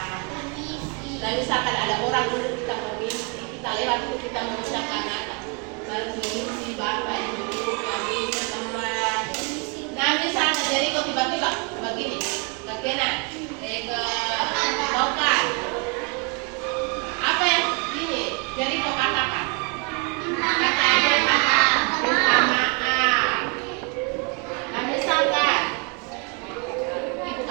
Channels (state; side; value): quieter; left; 34.4 dB